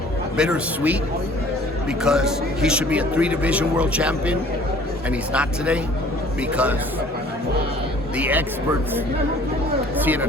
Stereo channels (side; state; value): both; normal; correlation 0.52